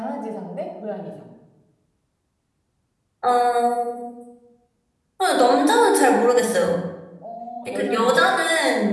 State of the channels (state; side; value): identical; both; correlation 1.00